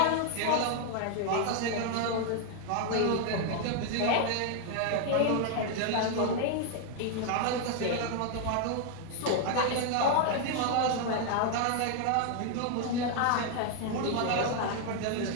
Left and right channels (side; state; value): both; different; correlation 0.00